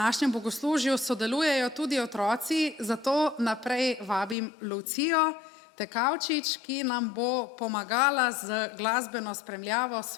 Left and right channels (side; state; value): right; drops out; at 4.4 s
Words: bogoslužju sodelujejo tudi otroci, zato naprej vabim Lucijo Tekavčič, ki nam bo pomagala z glasbeno spremljavo